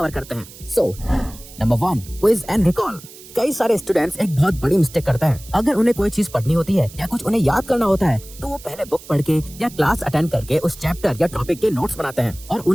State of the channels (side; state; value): right; noise; hiss, 19 dB below the sound